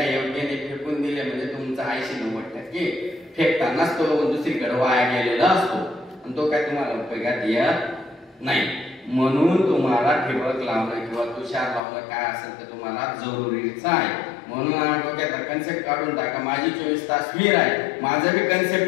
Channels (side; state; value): right; drops out; at 11.8 s